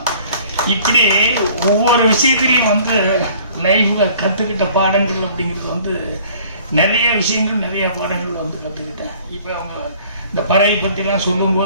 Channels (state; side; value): inverted; both; correlation -0.53